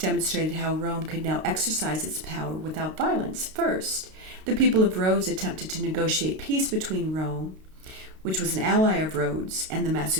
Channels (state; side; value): late; left; 32 ms